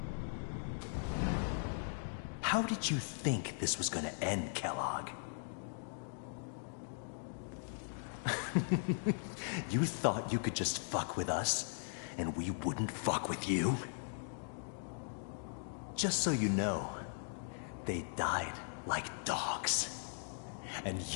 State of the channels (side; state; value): right; silent; digital silence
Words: How did you think this was gonna end, Kellogg? You thought you could just fuck with us, and we wouldn't fuck with you? Just so you know, they died like dogs. And